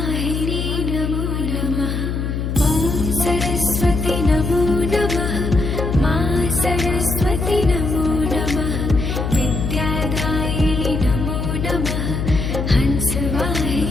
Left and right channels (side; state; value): left; noise; hum, 2 dB below the sound